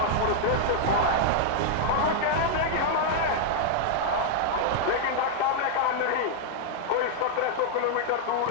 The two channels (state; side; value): different; both; correlation -0.01